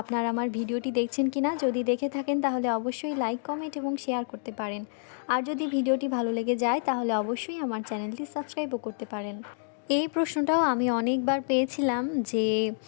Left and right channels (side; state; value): right; silent; digital silence